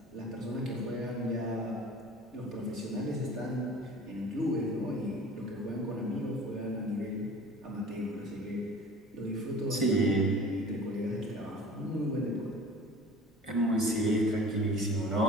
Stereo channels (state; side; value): normal; both; correlation 0.43